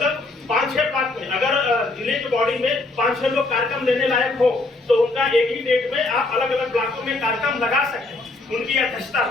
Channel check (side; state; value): right; quieter; 3.1 dB